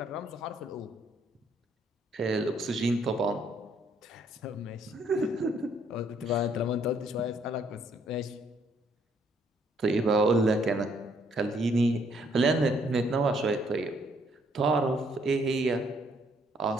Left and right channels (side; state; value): both; normal; correlation 0.68